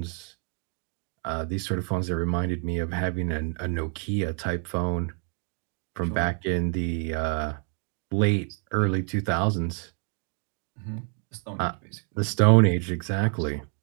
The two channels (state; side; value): quieter; left; 37.3 dB